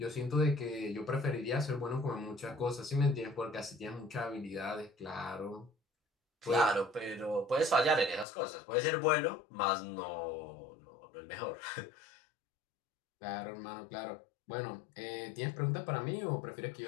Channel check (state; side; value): drops out; right; at 8.2 s